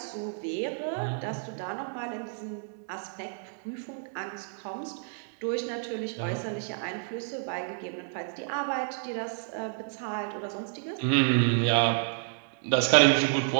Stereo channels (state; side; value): silent; left; digital silence